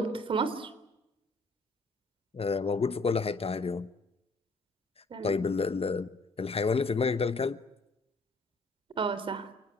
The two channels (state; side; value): normal; both; correlation 0.60